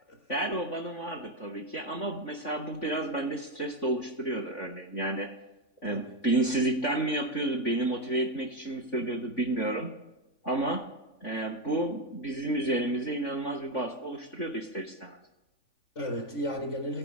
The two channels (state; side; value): late; right; 3.5 ms